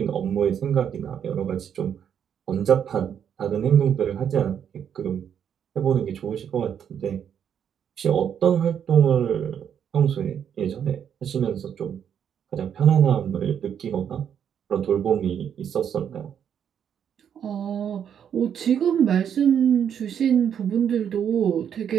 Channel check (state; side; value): quieter; left; 8.5 dB